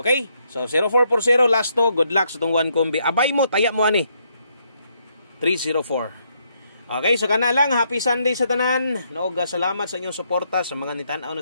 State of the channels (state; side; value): inverted; both; correlation -0.74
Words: So 0440 last to, good luck sa tong one combi. Abay mo, taya mo ani. 304. Okay, so kana lang, happy Sunday sa tanan. Noog salamat sa inyong suporta sa mga nitan-aw na